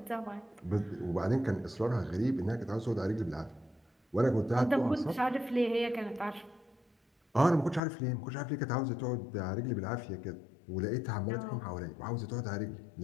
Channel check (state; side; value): drops out; right; at 7.8 s